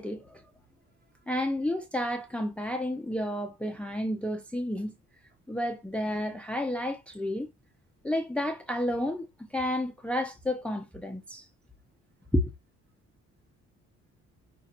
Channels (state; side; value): normal; both; correlation 0.78